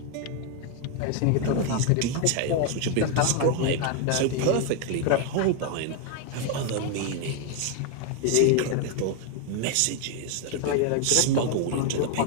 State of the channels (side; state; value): both; different; correlation 0.01